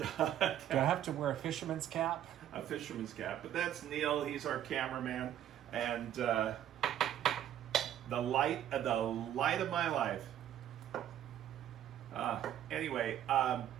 I have to wear a fisherman's cap? A fisherman's cap. But that's Neil. He's our cameraman. And the light of my life. Anyway, I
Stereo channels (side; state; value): left; quieter; 11.0 dB